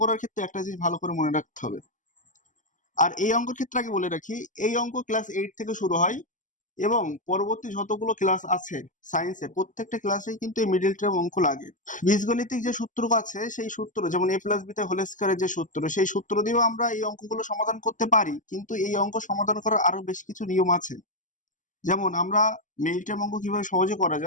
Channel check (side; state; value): right; late; 0.37 ms